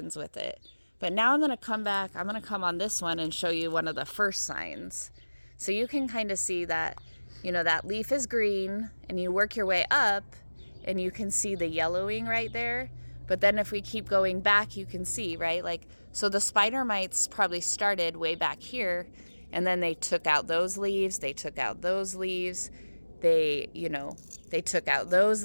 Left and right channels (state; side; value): inverted; both; correlation -1.00